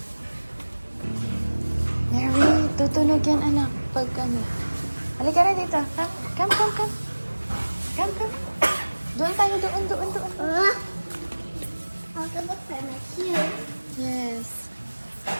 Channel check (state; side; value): inverted; both; correlation -1.00